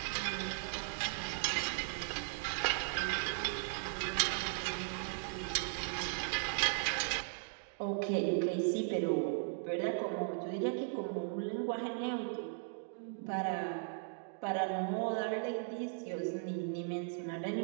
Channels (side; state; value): left; silent; digital silence